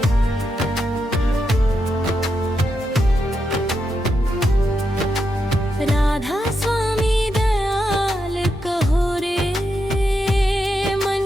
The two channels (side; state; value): both; normal; correlation 0.84